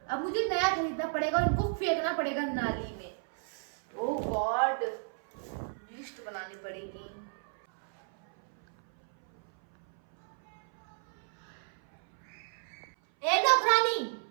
अब मुझे नया खरीदना पड़ेगा और इनको फेंकना पड़ेगा नाली में। ओह गॉड, लिस्ट बनानी पड़ेगी। ए नौकरानी,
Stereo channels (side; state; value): left; silent; 56 dB below the other